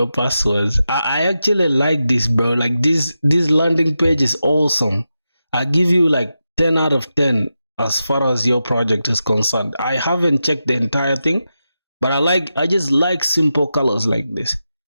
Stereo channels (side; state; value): both; inverted; correlation -0.90